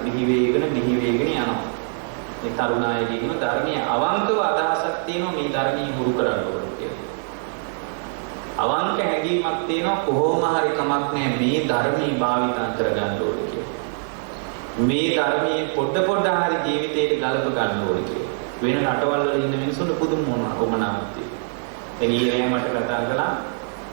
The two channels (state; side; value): silent; left; digital silence